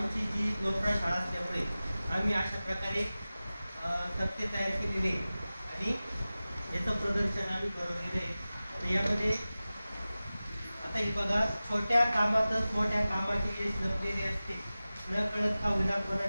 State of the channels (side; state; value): both; inverted; correlation -0.96